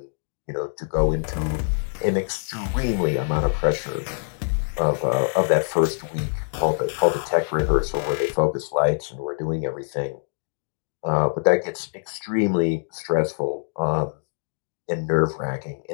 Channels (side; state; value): right; silent; digital silence